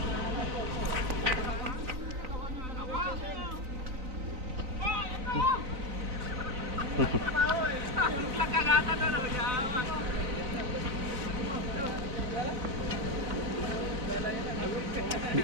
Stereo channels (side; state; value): left; late; 3.9 ms